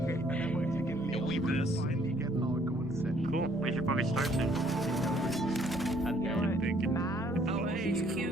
Yo, we best. Cool. We should probably start soon. I'm thinking. Oh, hey, HQ.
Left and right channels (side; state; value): both; normal; correlation 0.63